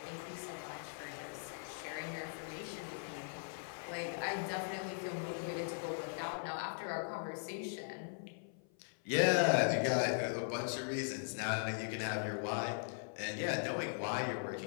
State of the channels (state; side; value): silent; right; 51 dB below the other